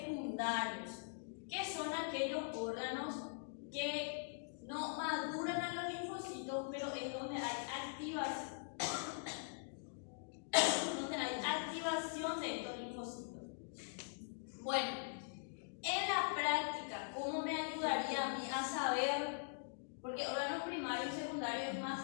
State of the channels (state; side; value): silent; right; digital silence